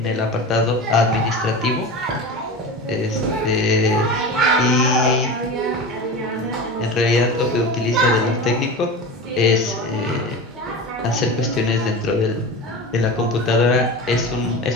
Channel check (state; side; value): normal; both; correlation 0.29